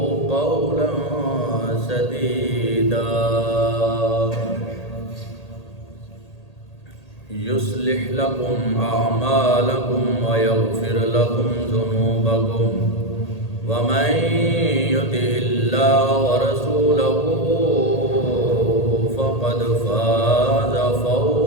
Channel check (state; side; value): late; right; 1.8 ms